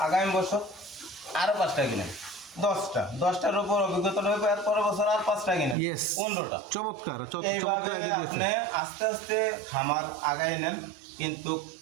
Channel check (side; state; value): left; drops out; at 5.8 s